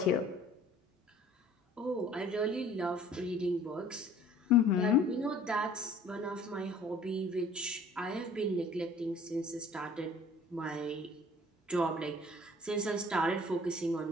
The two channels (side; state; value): both; normal; correlation 0.52